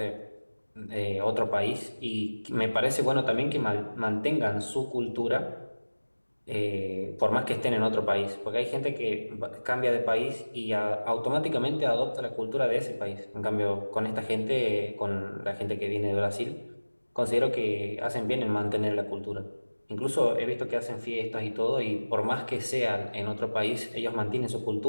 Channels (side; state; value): both; inverted; correlation -1.00